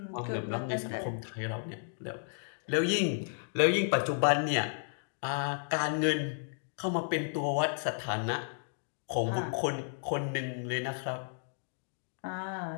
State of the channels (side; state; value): right; silent; digital silence